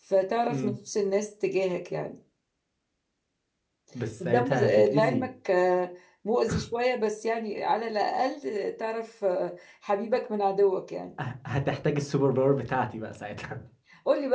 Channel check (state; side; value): identical; both; correlation 1.00